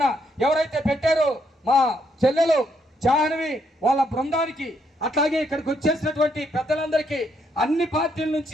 ఎవరైతే పెట్టారో మా చెల్లెలు జాహ్నవి వాళ్ళ బృందానికి, అట్లాగే ఇక్కడికి వచ్చేసినటువంటి పెద్దలందరికీ, అన్ని పార్టీల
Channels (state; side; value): normal; both; correlation 0.74